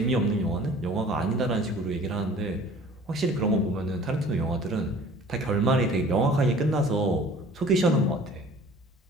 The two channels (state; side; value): normal; both; correlation 0.48